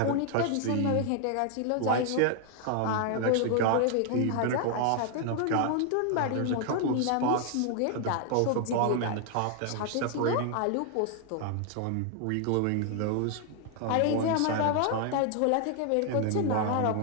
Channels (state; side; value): different; both; correlation 0.00